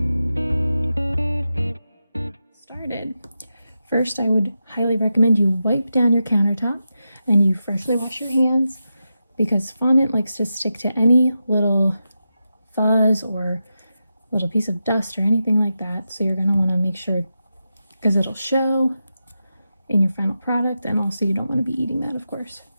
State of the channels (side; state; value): both; inverted; correlation -0.89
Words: First, I would highly recommend you wipe down your countertop and you freshly wash your hands because fondant likes to stick to any little fuzz or little piece of dust or anything like that. So you're going to want to make sure because it'll show in your final product, and also you don't want to be eating that, of course.